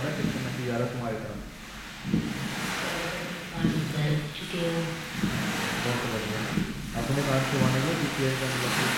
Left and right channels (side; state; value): both; identical; correlation 1.00